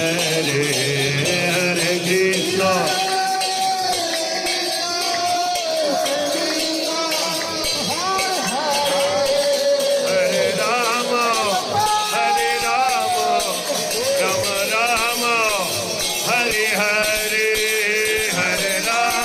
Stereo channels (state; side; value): identical; both; correlation 1.00